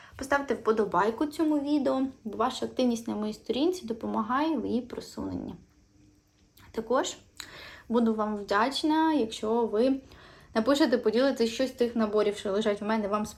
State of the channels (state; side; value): identical; both; correlation 1.00